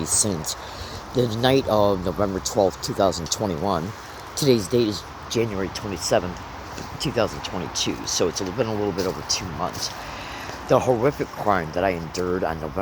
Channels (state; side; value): identical; both; correlation 1.00